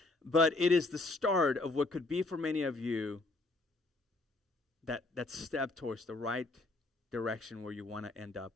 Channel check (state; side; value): quieter; right; 3.0 dB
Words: but it is the start of what could be for many of you that step towards the right direction where you want to end up,